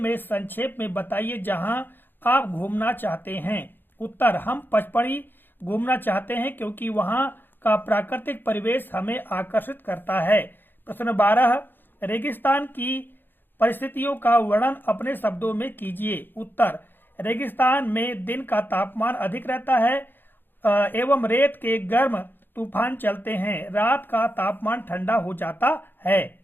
संक्षेप में बताइए जहां आप घूमना चाहते हैं। उत्तर, हम पचमढ़ी घूमना चाहते हैं क्योंकि वहां का प्राकृतिक परिवेश हमें आकर्षित करता है। प्रश्न 12, रेगिस्तान की परिस्थितियों का वर्णन अपने शब्दों में कीजिए। उत्तर, रेगिस्तान में दिन का तापमान अधिक रहता है एवं रेत के गर्म तूफान चलते हैं, रात का तापमान ठंडा हो जाता है।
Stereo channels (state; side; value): late; right; 0.096 ms